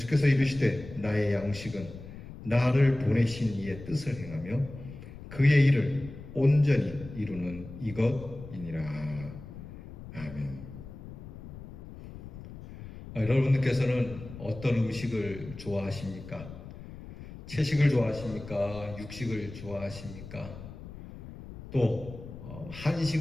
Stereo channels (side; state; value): left; noise; rumble, 14 dB below the sound